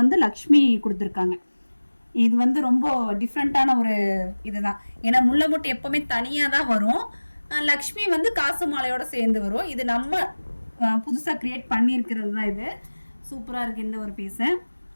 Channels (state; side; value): inverted; both; correlation -1.00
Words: வந்து லக்ஷ்மி கொடுத்துருக்காங்க. இது வந்து ரொம்ப டிஃப்ரெண்ட்டான ஒரு இதுதான். ஏன்னா முல்லை முட்டு எப்போவுமே தனியாக தான் வரும். லக்ஷ்மி வந்து காசு மாலையோட சேர்ந்து வரும். இது நம்ம புதுசாக க்ரியேட் பண்ணியிருக்கிறது தான். இது சூப்பராக இருக்குது இந்த ஒரு பீஸு.